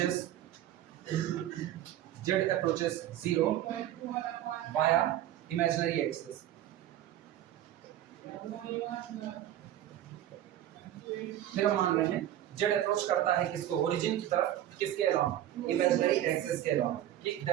approaches 0 via imaginary axis। फिर हम मान रहे हैं z अप्रोच करता है किसको, ओरिजिन की तरफ, किसके अलावा, इमेजिनरी एक्सिस के अलावा, ठीक,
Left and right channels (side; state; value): left; quieter; 12.5 dB